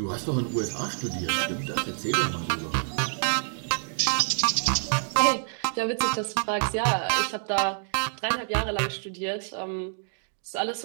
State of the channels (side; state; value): left; silent; digital silence